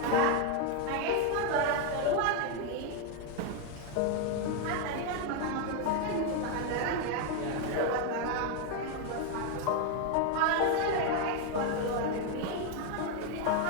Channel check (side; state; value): both; different; correlation 0.01